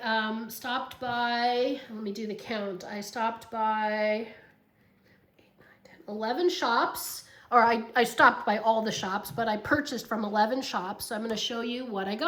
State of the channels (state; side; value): identical; both; correlation 1.00